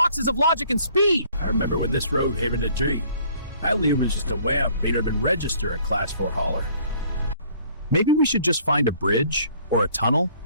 of logic and speed. I remember when this road had a dream. I was just a wamp, made him register a Class 4 hauler. Maybe we should just find a bridge, or a tunnel,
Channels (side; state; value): both; inverted; correlation -0.58